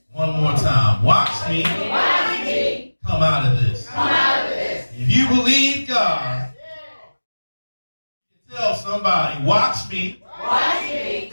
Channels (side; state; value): both; inverted; correlation -1.00